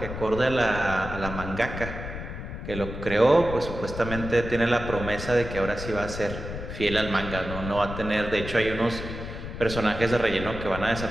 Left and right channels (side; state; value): left; noise; rumble, 8 dB below the sound